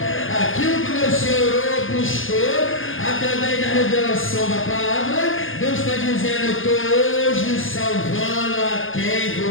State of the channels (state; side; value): late; right; 0.58 ms